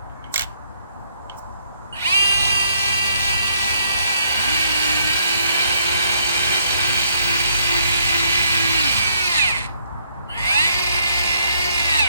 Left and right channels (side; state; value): both; inverted; correlation -0.69